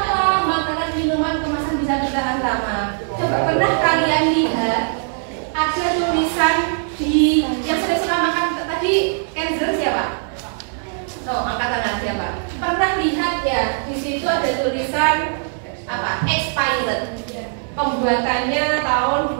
makanan minuman kemasan bisa bertahan lama? Coba pernah kalian lihat ada tulisan di yang sering suka makan tadi Kenzer siapa? Angkat tangan siapa? Pernah lihat ya di situ ada tulisan apa? Expired. Pembuatannya tahun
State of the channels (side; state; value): left; silent; 66 dB below the other